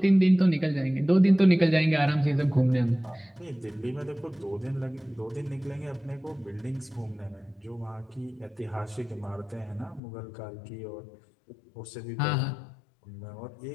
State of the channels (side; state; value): right; drops out; at 10.0 s